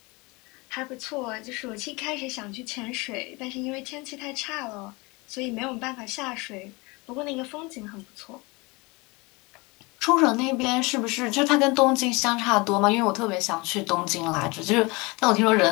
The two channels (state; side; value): quieter; right; 25.7 dB